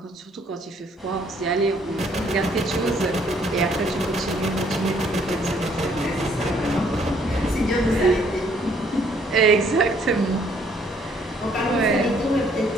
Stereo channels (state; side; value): normal; both; correlation 0.64